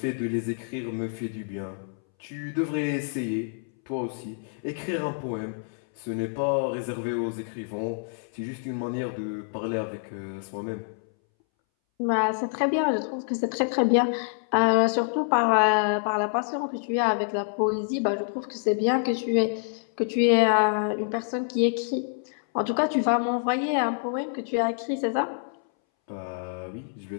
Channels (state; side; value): silent; right; 60 dB below the other